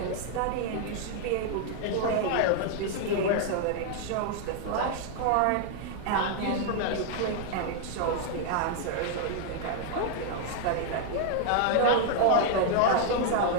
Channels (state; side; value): different; both; correlation 0.00